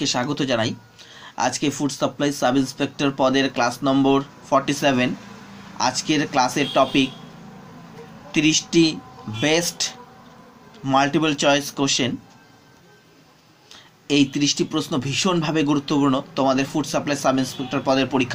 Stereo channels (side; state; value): both; identical; correlation 1.00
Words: স্বাগত জানাই। আজকে ফুড সাপ্লাই সাব ইন্সপেক্টর পদের ক্লাস নম্বর 47। আজকের ক্লাসের টপিক 30টি বেস্ট মাল্টিপল চয়েস কোশ্চেন। এই 30টি প্রশ্ন ভীষণভাবে গুরুত্বপূর্ণ তোমাদের ফুড সাপ্লাই সাব ইন্সপেক্টর পদের